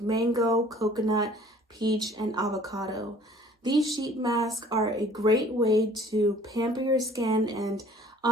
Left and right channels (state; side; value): normal; both; correlation 0.53